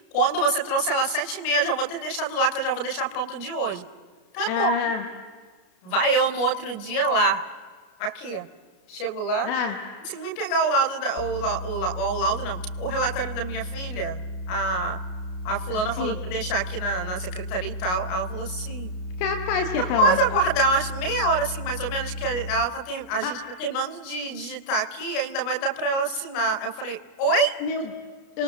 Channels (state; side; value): late; right; 33 ms